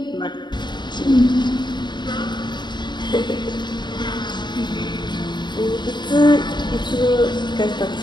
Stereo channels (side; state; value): right; late; 0.22 ms